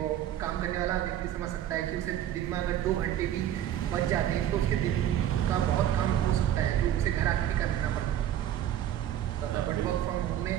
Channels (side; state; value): left; quieter; 11.3 dB